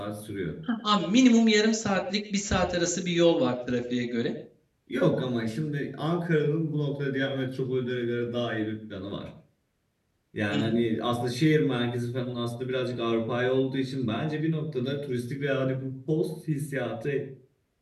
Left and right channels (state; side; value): identical; both; correlation 1.00